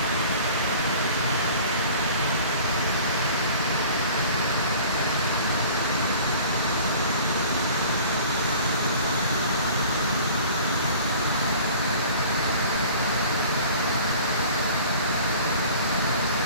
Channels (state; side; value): inverted; both; correlation -0.46